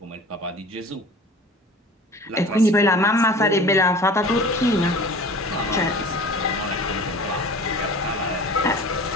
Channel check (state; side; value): normal; both; correlation 0.41